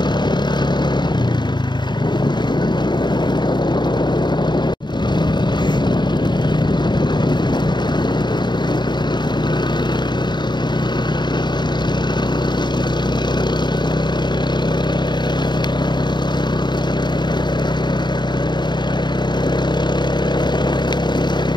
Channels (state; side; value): late; right; 0.21 ms